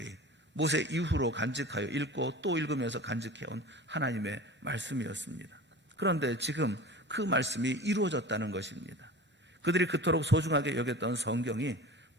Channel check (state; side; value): normal; both; correlation 0.37